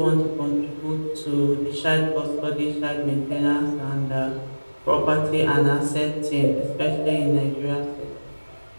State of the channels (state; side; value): inverted; both; correlation -1.00